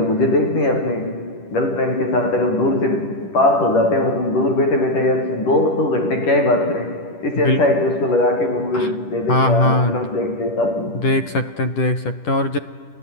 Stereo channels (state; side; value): late; right; 10 ms